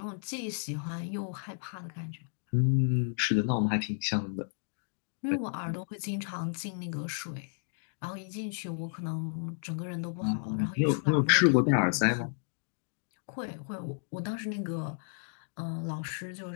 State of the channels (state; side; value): silent; right; digital silence